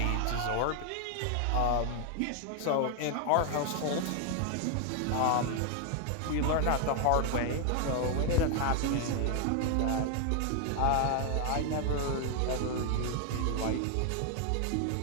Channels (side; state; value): both; different; correlation 0.00